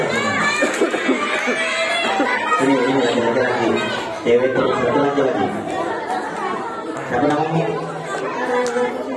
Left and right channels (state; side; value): identical; both; correlation 1.00